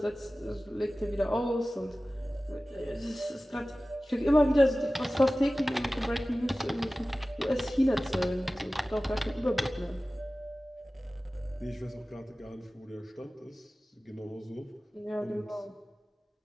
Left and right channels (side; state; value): both; normal; correlation 0.97